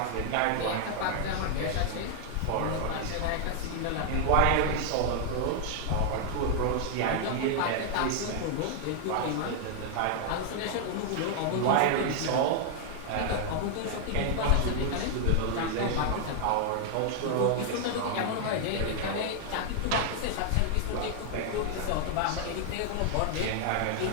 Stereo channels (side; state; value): both; different; correlation 0.00